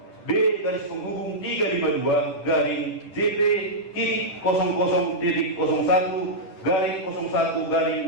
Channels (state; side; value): late; right; 10 ms